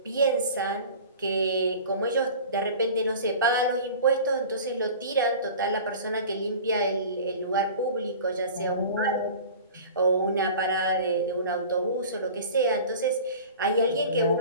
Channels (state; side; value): inverted; both; correlation -0.40